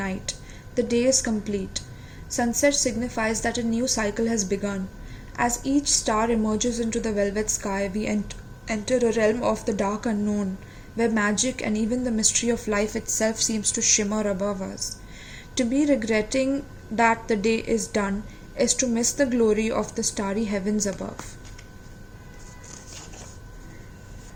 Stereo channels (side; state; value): both; identical; correlation 1.00